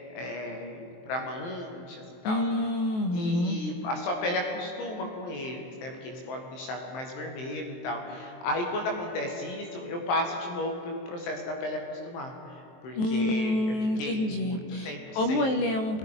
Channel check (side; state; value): right; late; 23 ms